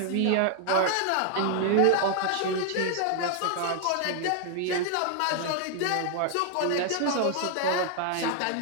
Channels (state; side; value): different; both; correlation 0.00